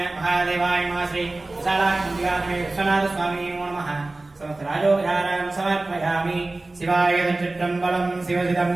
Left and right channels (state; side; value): quieter; left; 3.1 dB